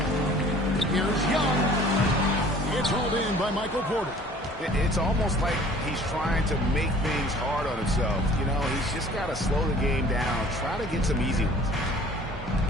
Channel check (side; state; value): both; normal; correlation 0.50